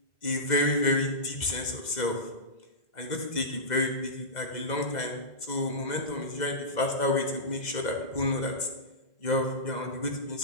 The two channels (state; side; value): late; right; 2.0 ms